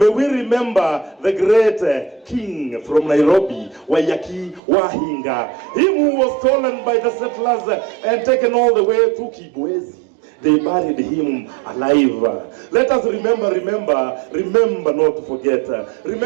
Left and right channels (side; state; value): left; drops out; at 4.6 s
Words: we remember the great king from Nairobi, Wayaki Wahinga, him who was stolen by the settlers and taken all the way to Kibwezi. They buried him alive. Let us remember not to forget.